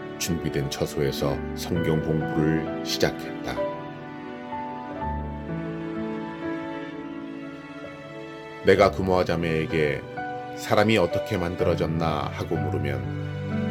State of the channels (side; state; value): both; identical; correlation 1.00